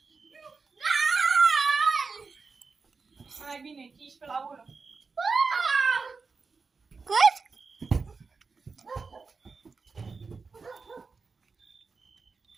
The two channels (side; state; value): left; quieter; 4.6 dB